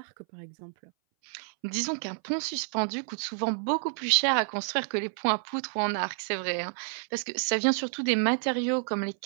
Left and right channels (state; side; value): silent; left; 58 dB below the other